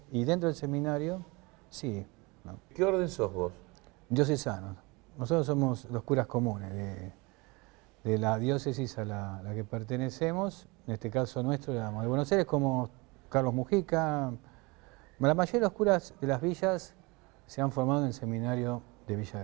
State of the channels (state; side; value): quieter; left; 25.9 dB